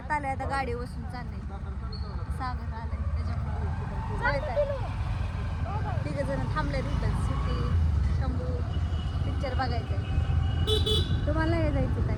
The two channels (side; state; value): both; identical; correlation 1.00